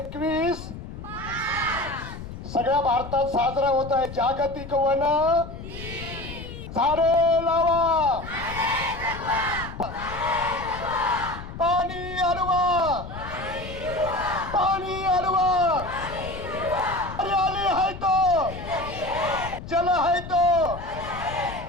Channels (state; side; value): noise; left; rumble, 11 dB below the sound